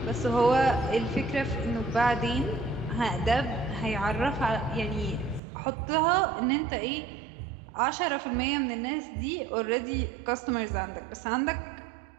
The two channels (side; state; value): left; drops out; at 5.4 s